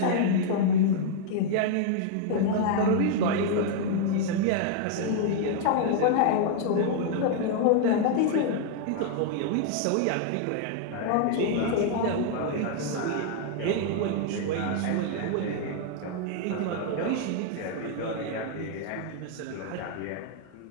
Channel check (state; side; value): different; both; correlation 0.00